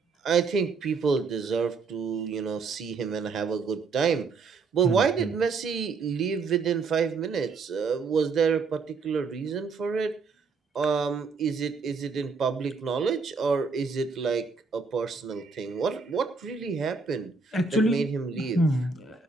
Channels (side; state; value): left; quieter; 4.7 dB